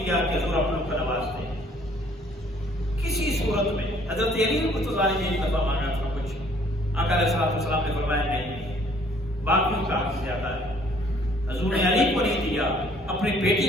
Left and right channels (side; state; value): both; normal; correlation 0.60